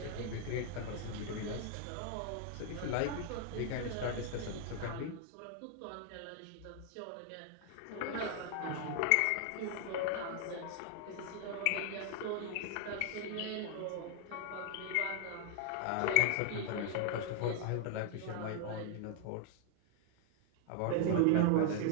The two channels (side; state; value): both; different; correlation 0.00